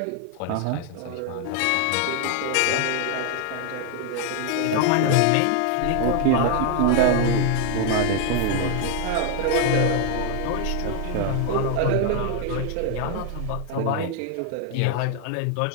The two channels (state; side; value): different; both; correlation 0.00